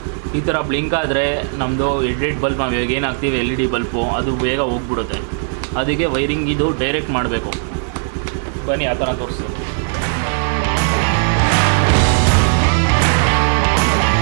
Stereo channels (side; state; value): left; silent; 68 dB below the other